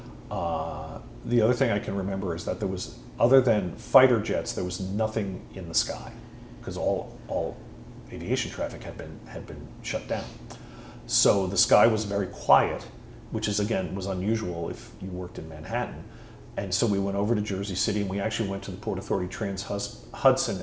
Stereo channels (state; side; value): identical; both; correlation 1.00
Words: The other thing I can remember is that there was, other than fighter jets, there was nothing in the sky because all aviation traffic had been shut down. So the sky was very quiet, which is again was unusual if you worked in Manhattan. And so we went over to Jersey City, and we actually went to the Port Authority Trans-Hudson